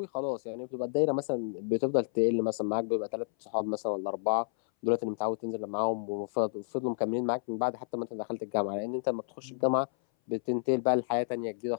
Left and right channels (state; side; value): silent; right; 57 dB below the other